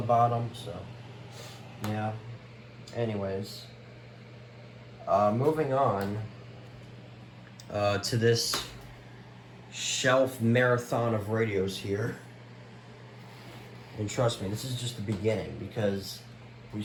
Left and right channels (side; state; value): both; identical; correlation 1.00